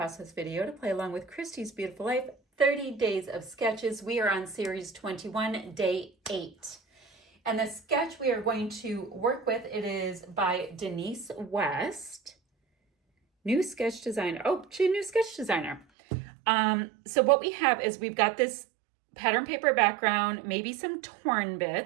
video to play along with Christy's Beautiful Life, 30 Days of Sketches. We are on series 21, day 8. And the sketch we are going to work with, it is by Denise West. New sketch designer. Oh, she's a new sketch designer. So what we have is we've got this pattern paper background, maybe some torn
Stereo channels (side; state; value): left; drops out; at 15.9 s